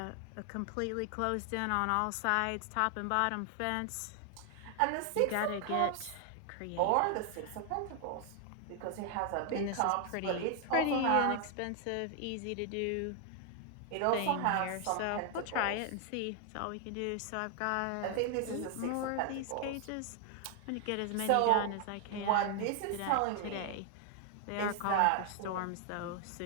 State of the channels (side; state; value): both; different; correlation 0.00